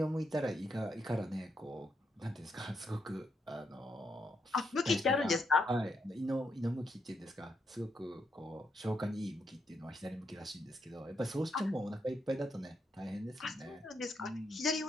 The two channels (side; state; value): both; normal; correlation 0.79